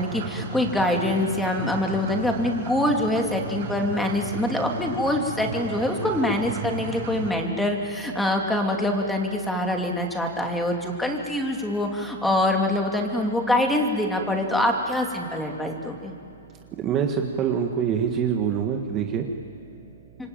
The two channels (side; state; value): right; noise; hum, 24 dB below the sound